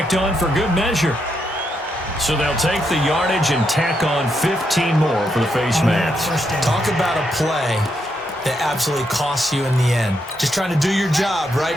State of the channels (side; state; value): both; normal; correlation 0.80